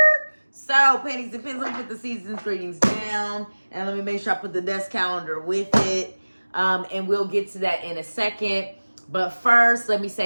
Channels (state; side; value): inverted; both; correlation -1.00